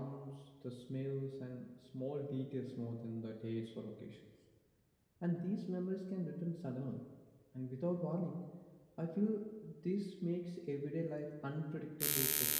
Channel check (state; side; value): identical; both; correlation 1.00